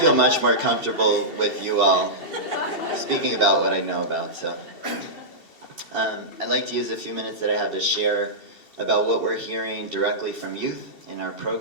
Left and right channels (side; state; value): right; late; 2.7 ms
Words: much more comfortable with you all speaking about what I know about. So I'd like to use a few minutes that I have to share about what we're hearing directly from youth in our